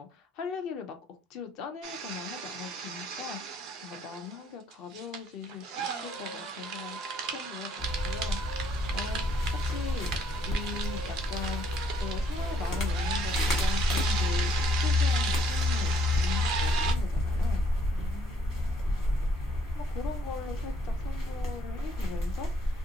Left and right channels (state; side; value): normal; both; correlation 0.68